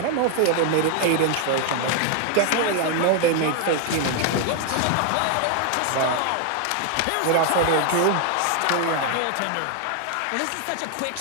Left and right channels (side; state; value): both; different; correlation 0.00